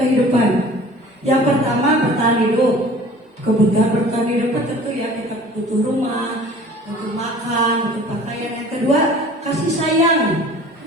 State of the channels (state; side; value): normal; both; correlation 0.46